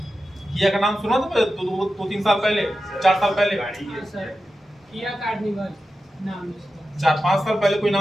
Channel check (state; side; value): normal; both; correlation 0.92